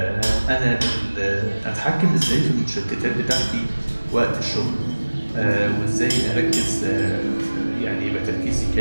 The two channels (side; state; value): both; inverted; correlation -1.00